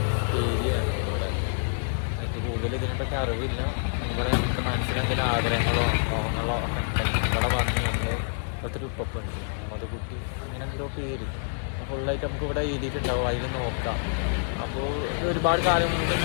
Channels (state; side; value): silent; right; 60 dB below the other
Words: ഏരിയയാണ് ഇവിടെ. എനിക്ക് കൂടുതൽ ഇതിനെപ്പറ്റി അറിവില്ല. ഇവിടെ നമുക്ക് മനസ്സിലെന്തെങ്കിലും ആഗ്രഹങ്ങളോ മോഹങ്ങളോ ഒക്കെ ഉണ്ടെങ്കിൽ ഇവിടെ വന്ന് നമ്മൾ ഒത്തിരി ഉപ്പുണ്ട് മധുകുട്ടി അങ്ങനെ എന്തോ പേര് ഫുള്ളായിട്ട് നമുക്ക് ഇവിടെ എഴുതിയിട്ടുണ്ടാവും. അതിൽ നോക്കാം. അപ്പോൾ ഒരുപാട് കാലം കൊണ്ട്